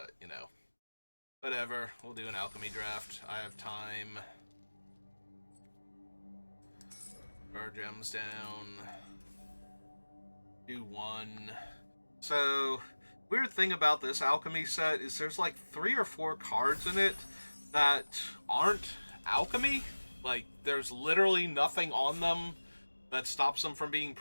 whatever. We'll do an alchemy draft. I have time. Our gems down. Do one. So, weird thing about this alchemy set is there's like 3 or 4 cards in it that aren't alchemy. Like, there's literally nothing on them that stops them from being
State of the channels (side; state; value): both; inverted; correlation -1.00